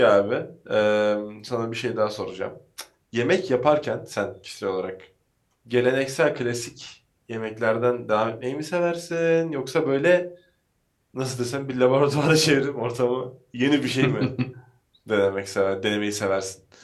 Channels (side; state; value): both; identical; correlation 1.00